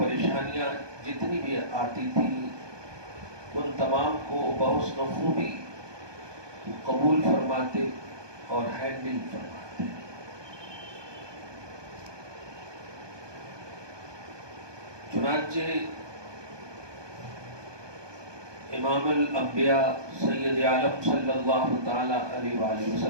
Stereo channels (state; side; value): late; left; 1.2 ms